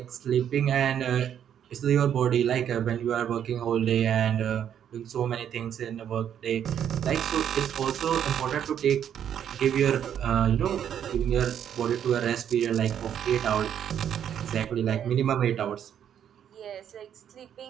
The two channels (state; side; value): quieter; left; 9.3 dB